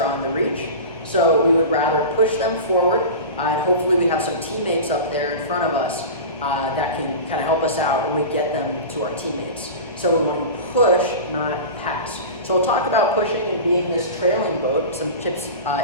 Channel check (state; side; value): inverted; both; correlation -0.30